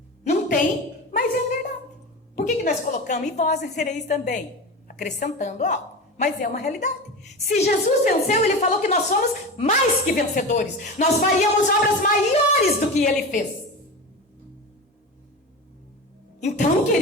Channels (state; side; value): normal; both; correlation 0.27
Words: Não tem, mas é verdade. Por que nós colocamos? E vós vencereis também. Acrescentando algo. Mas é uma realidade. Se Jesus venceu, ele falou que nós somos mais que vencedores. Nós faríamos obras maiores do que ele fez. Então,